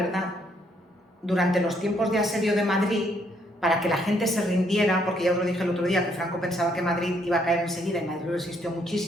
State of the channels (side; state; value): both; normal; correlation 0.70